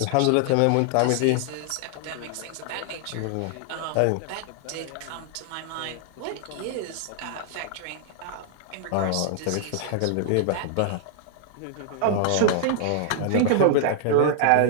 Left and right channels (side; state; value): both; different; correlation -0.01